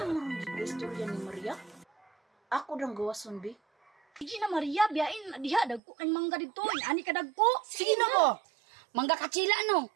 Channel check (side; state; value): left; drops out; at 5.8 s